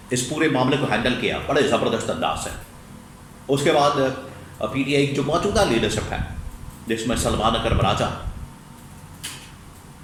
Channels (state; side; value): identical; both; correlation 1.00